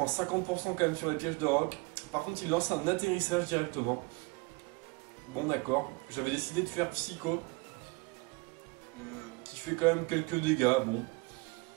50% quand même sur les pièges de roc. Par contre, il lance un atterrissage directement. Bon, d'accord. J'avais décidé de faire Psycho, qui fait quand même quelques dégâts. Bon,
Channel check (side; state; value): left; quieter; 27.1 dB